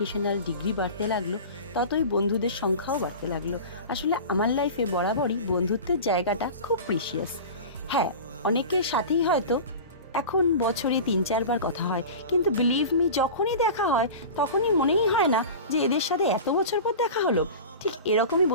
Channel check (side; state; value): both; inverted; correlation -0.33